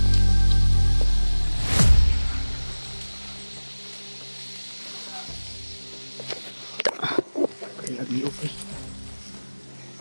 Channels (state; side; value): inverted; both; correlation -1.00